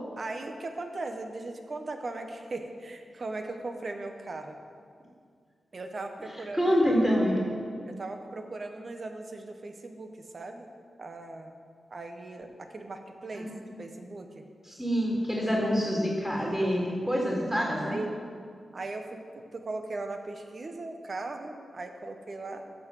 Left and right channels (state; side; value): normal; both; correlation 0.92